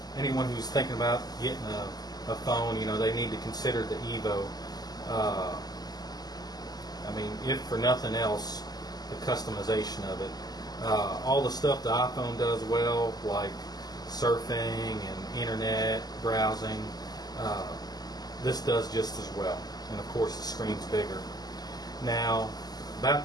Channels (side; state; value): right; late; 0.19 ms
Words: anyone who's thinking about getting a phone, they need to consider the EVO. I mean, if for nothing else, the customization of it. All the stuff the iPhone does well, like surfing and internet browsing, this does just as well. And of course the screen's bigger. Now, about